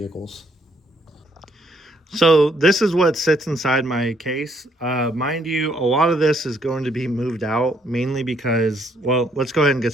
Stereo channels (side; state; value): both; normal; correlation 0.69